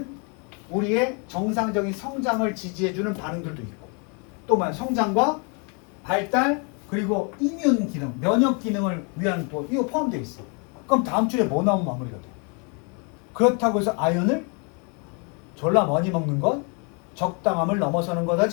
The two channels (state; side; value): quieter; right; 35.1 dB